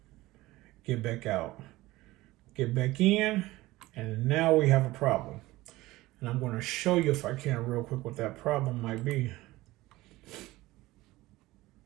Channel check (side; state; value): left; quieter; 18.6 dB